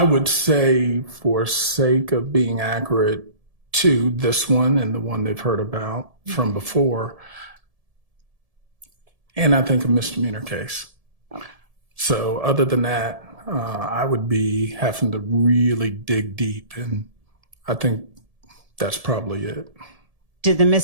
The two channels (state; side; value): late; left; 1.7 ms